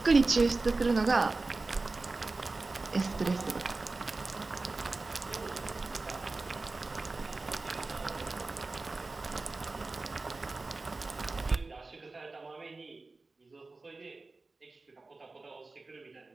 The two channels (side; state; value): left; quieter; 3.5 dB